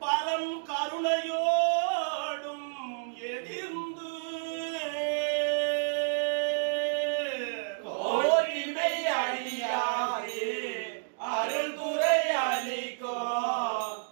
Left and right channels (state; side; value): silent; left; digital silence